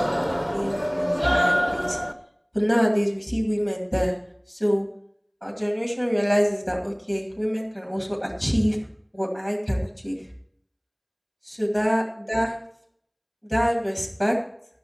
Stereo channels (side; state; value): both; identical; correlation 1.00